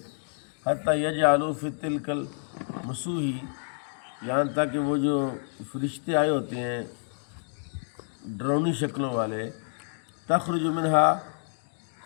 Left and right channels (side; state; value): right; silent; digital silence